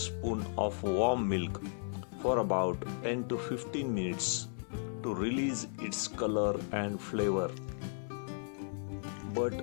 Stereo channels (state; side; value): silent; right; 54 dB below the other